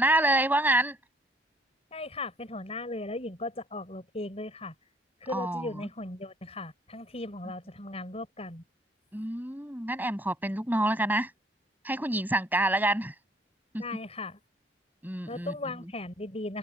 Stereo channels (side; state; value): both; normal; correlation 0.60